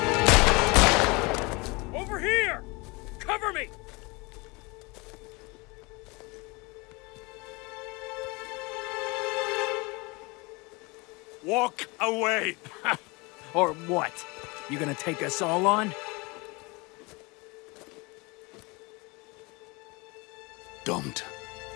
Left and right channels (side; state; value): right; quieter; 26.4 dB